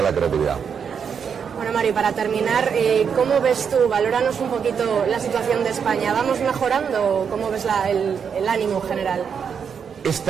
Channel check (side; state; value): left; quieter; 6.9 dB